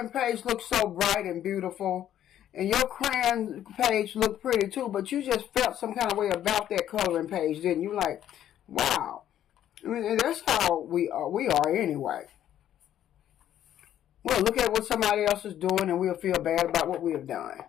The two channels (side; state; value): right; quieter; 11.2 dB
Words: page looks so bright and beautiful. And your crayon page looked pretty too. But you just felt some kind of way about that coloring page, didn't you? Like, wow. I mean, that's how we are anyway. We'll look at what somebody else is doing and we'll feel bad about what we have done.